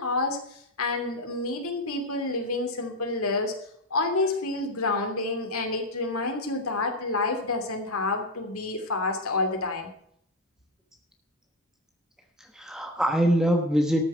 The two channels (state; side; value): normal; both; correlation 0.17